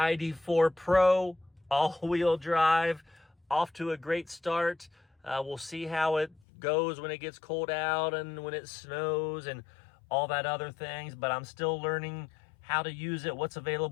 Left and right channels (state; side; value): drops out; right; at 6.4 s